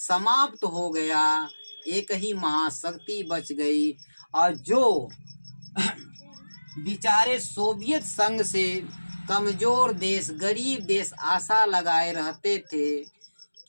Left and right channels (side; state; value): both; inverted; correlation -1.00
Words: हो गया, एक ही महाशक्ति बच गई। और जो बेचारे सोवियत संघ से कमजोर देश, गरीब देश आशा लगाए रहते थे